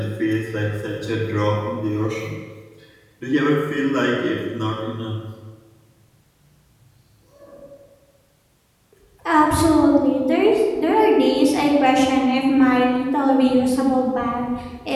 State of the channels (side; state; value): both; identical; correlation 1.00